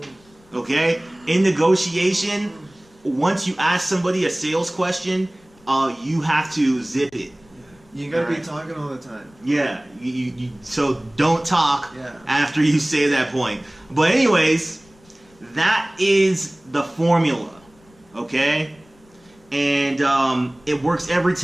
Okay? In negotiation, once you ask somebody a sales question, you have to zip it. You gotta be Alright. talking all the time. Yeah, so don't talk Yeah. after you say that point. But anyways, that is the formula, okay? And it works every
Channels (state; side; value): noise; left; rumble, 30 dB below the sound